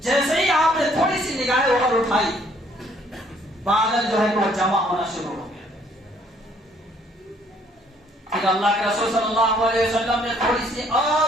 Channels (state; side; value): normal; both; correlation 0.63